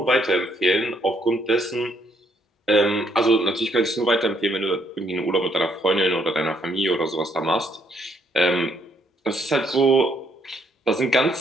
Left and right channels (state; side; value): normal; both; correlation 0.71